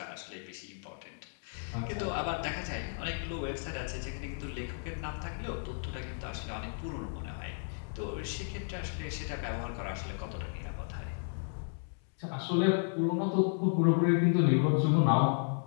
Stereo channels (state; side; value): silent; right; 55 dB below the other